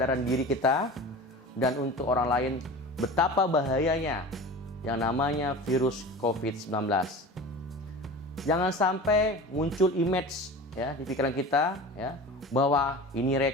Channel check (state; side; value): normal; both; correlation 0.35